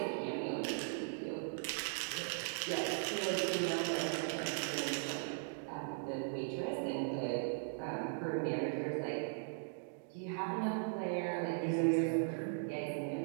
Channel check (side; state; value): left; silent; digital silence